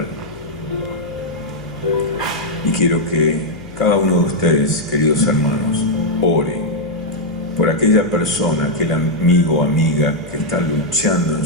Y quiero que cada uno de ustedes, queridos hermanos, ore por aquella persona, aquel amigo o amiga que está luchando en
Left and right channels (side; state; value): left; noise; hum, 17 dB below the sound